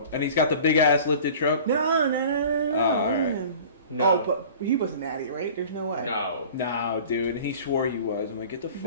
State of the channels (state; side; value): inverted; both; correlation -0.43